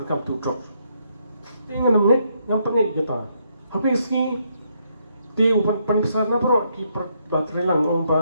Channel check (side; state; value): both; inverted; correlation -0.75